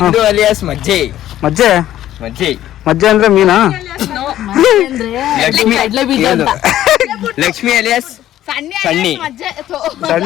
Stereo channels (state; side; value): quieter; right; 12.8 dB